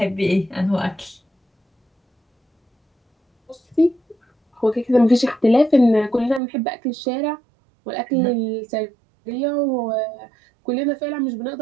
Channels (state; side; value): drops out; left; at 6.4 s